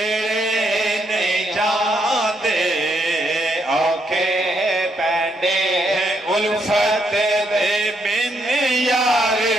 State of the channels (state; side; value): normal; both; correlation 0.76